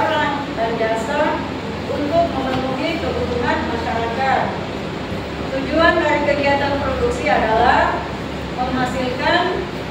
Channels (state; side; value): identical; both; correlation 1.00